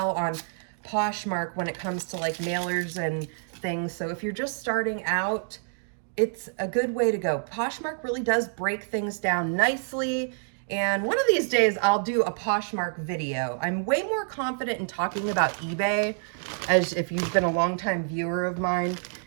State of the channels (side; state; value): left; silent; digital silence